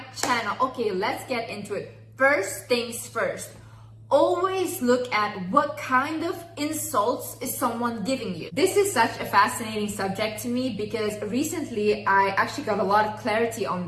channel. Okay, let's get into it. First things first. Always look at what kind of insults is someone giving you. This is such a fascinating subject to me because recently I actually got a lot of clarity on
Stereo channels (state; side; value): identical; both; correlation 1.00